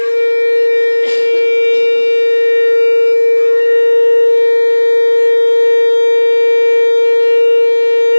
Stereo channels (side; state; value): both; inverted; correlation -1.00